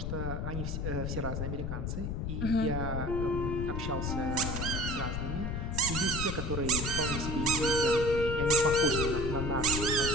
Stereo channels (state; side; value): noise; left; rumble, 2 dB below the sound